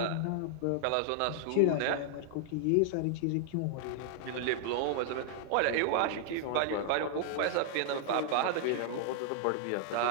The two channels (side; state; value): both; different; correlation -0.01